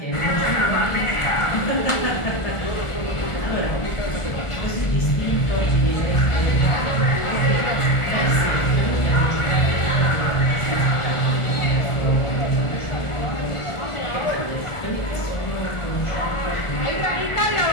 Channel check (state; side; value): late; right; 1.4 ms